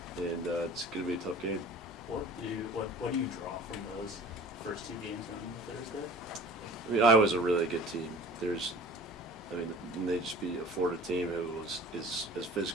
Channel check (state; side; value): normal; both; correlation 0.43